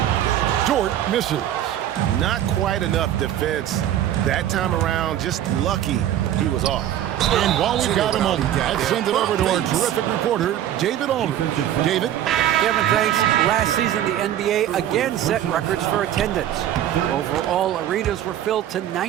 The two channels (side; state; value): left; quieter; 11.6 dB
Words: Dort misses. Not quite enough defense that time around. Just lucky he was off. And while we've got a moment, let's send it over to our terrific reporter, David Aldridge. David? Kevin, thanks. Last season, the NBA again set records for attendance. Overall, arenas were filled to